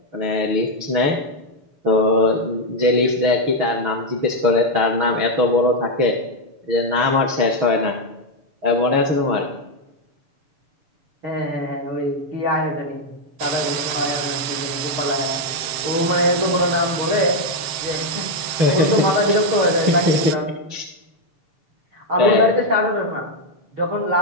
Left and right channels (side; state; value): left; late; 6.9 ms